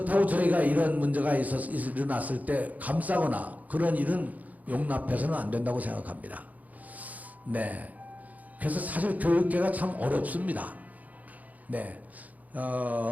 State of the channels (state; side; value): late; left; 0.077 ms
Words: 저희가 이런 문제가 일어났을 때 감싸거나 그런 일은 용납해서는 안 된다고 생각합니다. 네. 그래서 사실 교육계가 참 어렵습니다. 네.